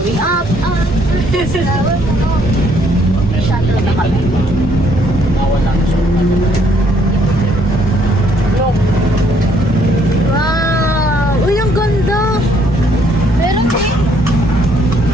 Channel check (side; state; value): both; normal; correlation 0.67